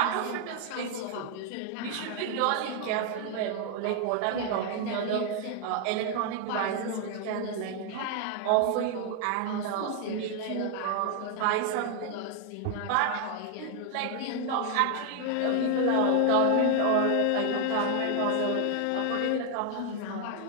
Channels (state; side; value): different; both; correlation 0.00